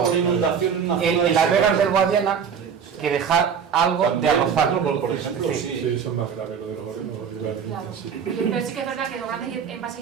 por inundación en una zona en las vegas del Guadiana que dejar algo de arrozal. Por ejemplo, sí, eso es más grave, lo de los olivares. Claro. Pero sí que es verdad que los grandes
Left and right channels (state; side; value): quieter; left; 7.0 dB